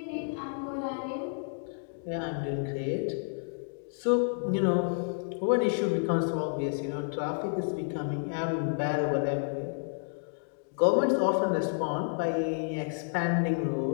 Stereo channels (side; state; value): right; silent; digital silence